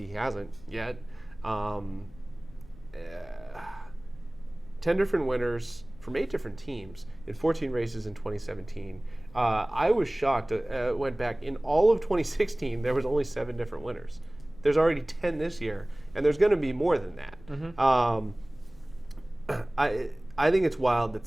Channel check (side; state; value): left; noise; rumble, 22 dB below the sound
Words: he hasn't yet. 10 different winners from 8 different teams in 14 races in 2017. I was shocked. Went back in all of 2016. There was only 7 different winners. There's already 10 this year, and there's going to be more than that. I think it's wild